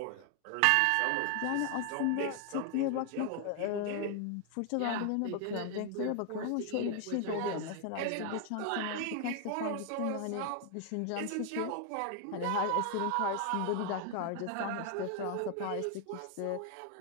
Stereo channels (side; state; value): both; different; correlation 0.00